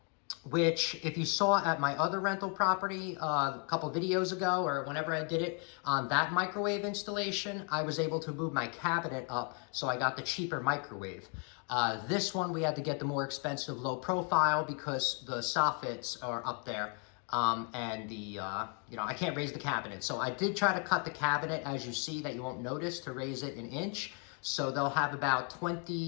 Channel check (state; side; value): quieter; right; 39.3 dB